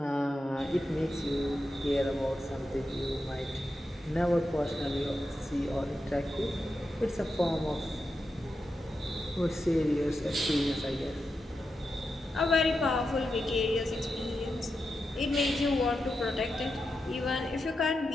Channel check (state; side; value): normal; both; correlation 0.88